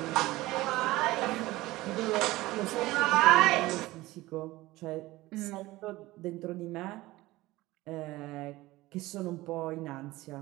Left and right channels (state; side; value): quieter; left; 18.6 dB